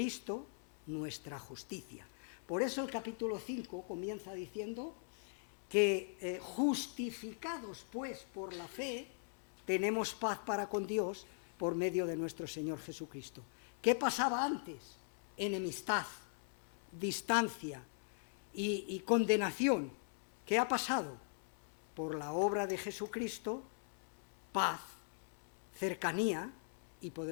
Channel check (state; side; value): silent; right; 51 dB below the other